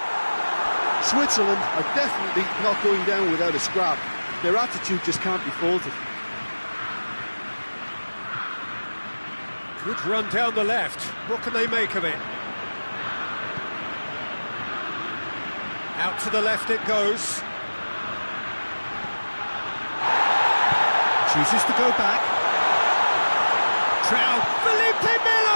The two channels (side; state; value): both; inverted; correlation -1.00